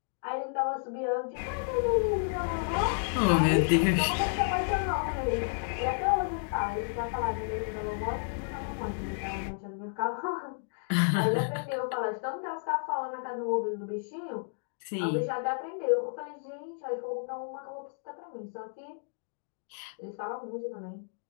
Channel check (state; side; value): silent; right; digital silence